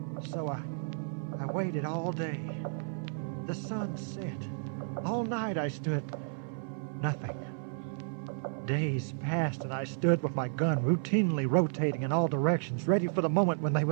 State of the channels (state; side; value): silent; left; 56 dB below the other